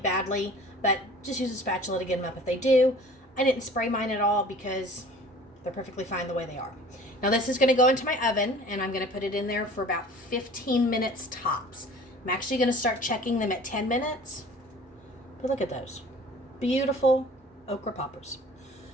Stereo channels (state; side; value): normal; both; correlation 0.46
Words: but just use a spatula to get them up if they do. I didn't spray mine at all because they're perfectly fine the way they are. Now this is going to go into my oven and I'm going to put it in there for about 15 minutes tops. I'm actually going to start checking them at 10 minutes. But look at those. Beautiful okra poppers.